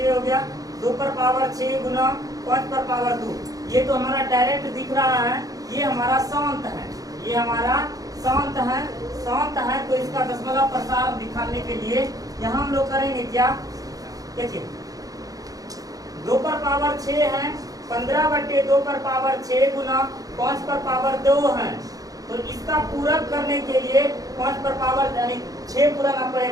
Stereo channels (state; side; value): late; left; 0.17 ms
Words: हो गया। 2 पर पावर 6 गुना 5 पर पावर 2। ये तो हमारा डायरेक्ट दिख रहा है, ये हमारा शांत है, ये हमारा शांत है। शांत है तो इसका दशमलव प्रसार दिखाने के लिए यहाँ हम लोग करेंगे क्या? देखिए 2 पर पावर 6 है, 15/2 पर पावर 6 गुना 5 पर पावर 2 है। तो इसका पूरक करने के लिए 5 पर पावर यानी 6 पुराना